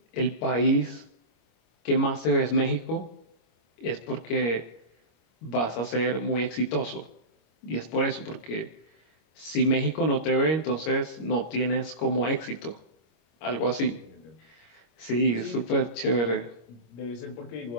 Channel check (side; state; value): right; late; 25 ms